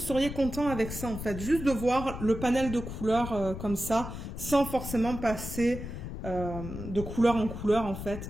content avec ça, en fait? Juste de voir le panel de couleurs comme ça, sans forcément passer de couleur en couleur, en fait.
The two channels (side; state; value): left; noise; rumble, 8 dB below the sound